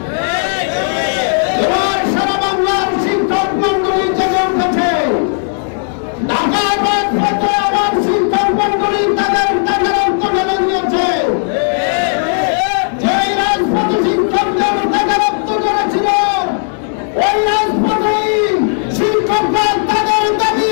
এবার সারা বাংলার শিক্ষক মন্ডলী জেগে উঠেছে। ঢাকার রাজপথে আবার শিক্ষক মন্ডলী তাদের রক্ত নিয়েছে। যে রাজপথে শিক্ষকদের তাদের রক্ত ঝরেছিল, ওই রাজপথেই শিক্ষকরা তাদের দাবি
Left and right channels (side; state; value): right; silent; 58 dB below the other